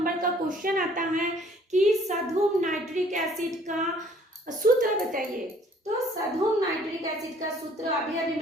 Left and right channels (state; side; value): normal; both; correlation 0.58